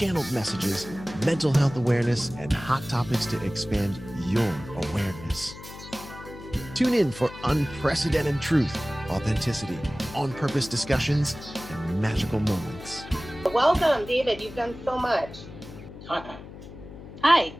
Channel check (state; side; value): noise; left; hum, 15 dB below the sound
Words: messages, mental health awareness, and hot topics to expand your awareness. Tune in for unprecedented truth, authenticity, on-purpose discussions, and magical moments. Welcome, David. You've done so much. Hi. Hi.